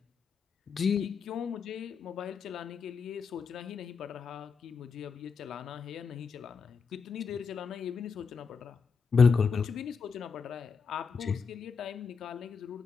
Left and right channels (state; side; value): quieter; right; 5.6 dB